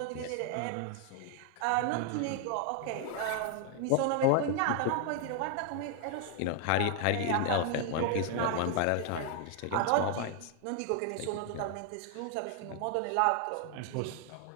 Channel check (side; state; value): both; different; correlation 0.00